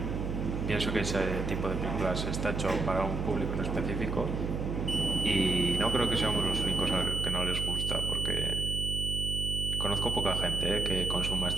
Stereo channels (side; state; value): right; noise; hum, 2 dB below the sound